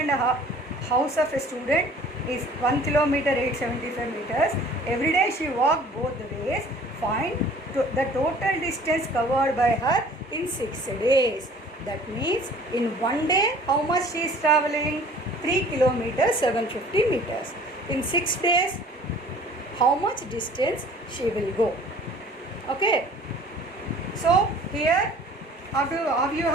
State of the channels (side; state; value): both; normal; correlation 0.50